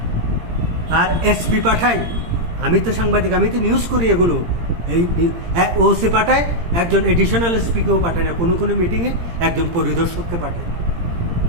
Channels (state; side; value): late; left; 17 ms